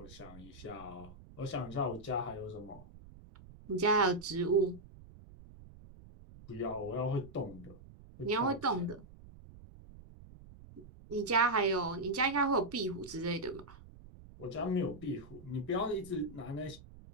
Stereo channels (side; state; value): right; noise; rumble, 19 dB below the sound